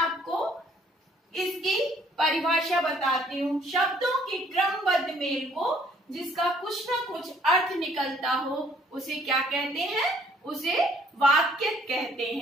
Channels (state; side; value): normal; both; correlation 0.62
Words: इसकी परिभाषा बताती हूँ। शब्दों के क्रमबद्ध मेल को जिसका कुछ न कुछ अर्थ निकलता हो उसे क्या कहते हैं? उसे वाक्य कहते